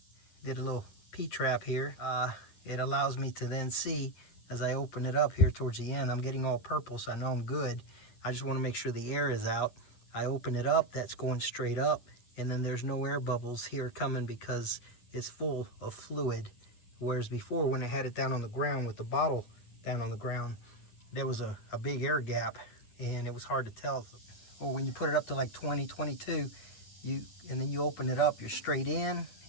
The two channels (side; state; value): right; late; 9.8 ms